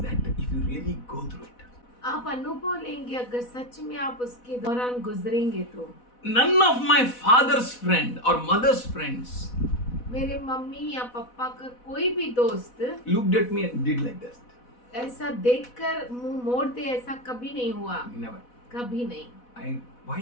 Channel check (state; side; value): late; right; 4.1 ms